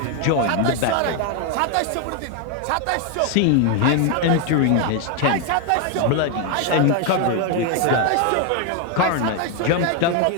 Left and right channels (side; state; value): both; different; correlation 0.01